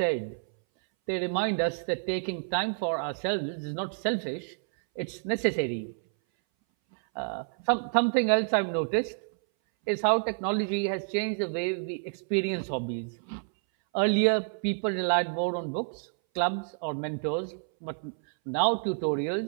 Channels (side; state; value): left; silent; 59 dB below the other